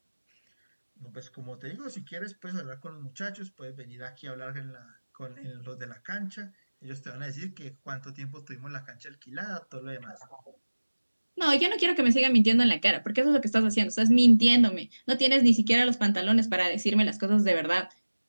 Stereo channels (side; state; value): both; inverted; correlation -1.00